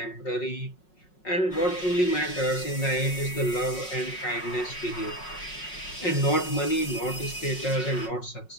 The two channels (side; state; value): right; late; 5.5 ms